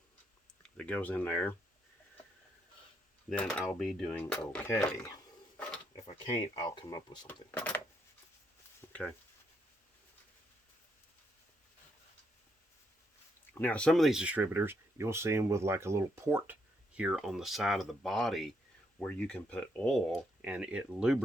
that goes in there, then I'll be doing okay. If I can't, I'll come up with something. Okay. Now, some of these distributors, you'll see them with like a little port here on the side of the body where you can put oil and it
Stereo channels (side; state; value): both; normal; correlation 0.76